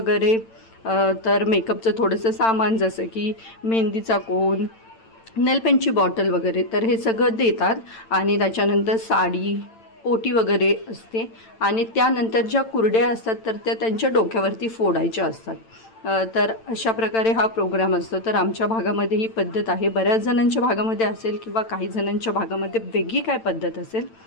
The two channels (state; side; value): late; right; 8.9 ms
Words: तर मेकअपचं थोडंसं सामान जसं की मेहंदीचा कोन, नेलपेंटची बॉटल वगैरे, तर हे सगळं देतात. आणि त्याच्यानंतर साडी, ओटी वगैरे असते. आणि त्यानंतर ज्या कुरड्या असतात तर त्या त्यांच्या डोक्यावरती फोडायच्या असतात. तर अशा प्रकारे हा प्रोग्राम असतो. तर आमच्या भागामध्ये ही पद्धत आहे. बऱ्याच जणांच्या भागामध्ये असेल किंवा काही जणांच्या भागामध्ये वेगळी काय पद्धत असेल.